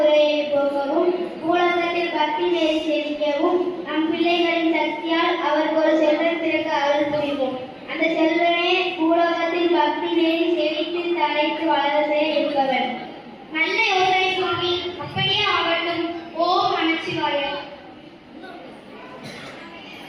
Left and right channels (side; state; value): both; identical; correlation 1.00